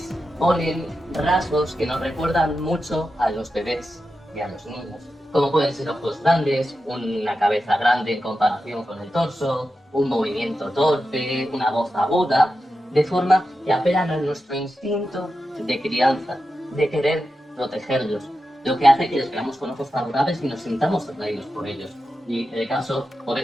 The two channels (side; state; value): both; normal; correlation 0.90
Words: ponen rasgos que nos recuerdan mucho a los bebés y a los niños, como pueden ser ojos grandes, una cabeza grande en comparación con el torso, un movimiento torpe, una voz aguda, de forma que apelan a nuestro instinto de crianza, de querer protegerlos, lo que hace que les veamos con ojos favorables y nos sintamos atraídos por ellos. Y el caso por